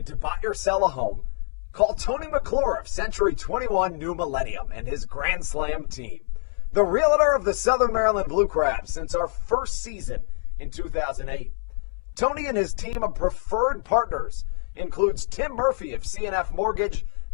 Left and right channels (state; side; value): silent; right; 60 dB below the other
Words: to buy or sell a home, call Tony McClure of Century 21 New Millennium and his Grand Slam team, the realtor of the Southern Maryland Blue Crabs since our first season in 2008. Tony and his team of preferred partners includes Tim Murphy of CNF Mortgage